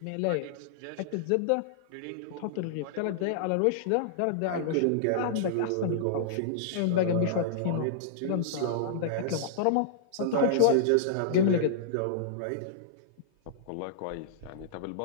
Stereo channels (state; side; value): different; both; correlation -0.02